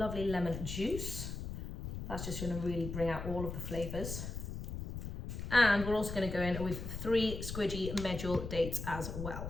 lemon juice. That's just going to really bring out all of the flavors. And we're also going to go in with 3 squidgy medjool dates as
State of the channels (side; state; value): left; noise; rumble, 6 dB below the sound